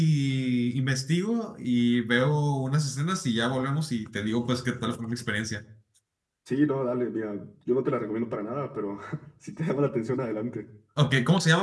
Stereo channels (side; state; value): both; identical; correlation 1.00